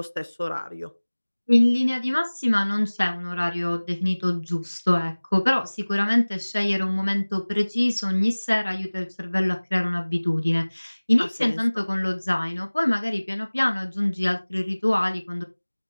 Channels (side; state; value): both; inverted; correlation -1.00